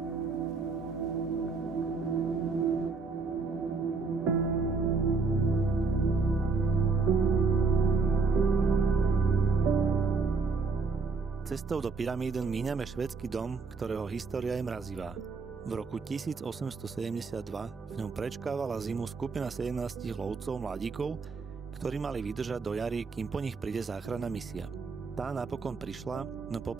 Cestou do Pyramiden míňame švédsky dom, ktorého história je mrazivá. V roku 1872 v ňom prečkávala zimu skupina 17 lovcov mladíkov, ktorí mali vydržať do jary, kým po nich príde záchranná misia. Tá napokon prišla, no po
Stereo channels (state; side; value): quieter; left; 4.5 dB